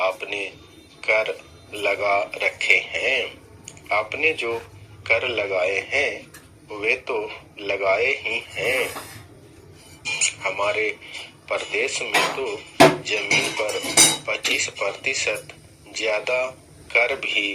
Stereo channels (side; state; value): both; identical; correlation 1.00